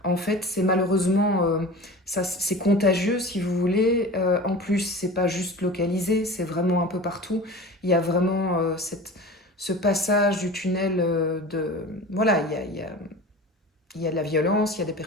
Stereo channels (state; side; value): normal; both; correlation 0.36